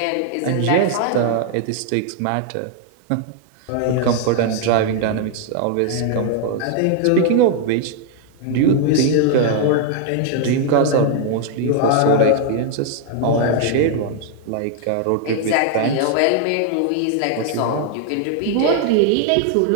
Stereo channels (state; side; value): different; both; correlation 0.00